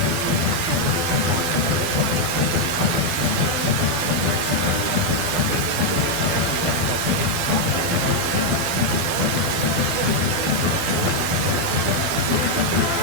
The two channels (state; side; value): late; left; 12 ms